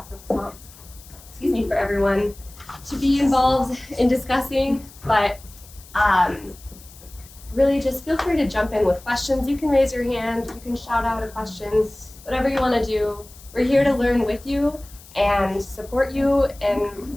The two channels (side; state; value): left; noise; hiss, 21 dB below the sound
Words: of prompts, for everyone to be involved in discussing, but really just feel free to jump in with questions. You can raise your hand, you can shout out a question, whatever you want to do. We're here to learn with you and support you,